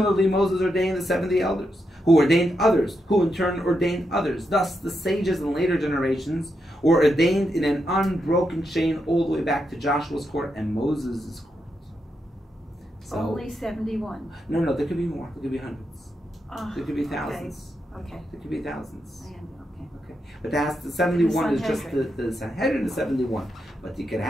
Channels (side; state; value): both; normal; correlation 0.84